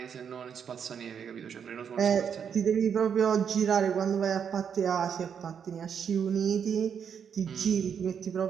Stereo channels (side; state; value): left; quieter; 7.5 dB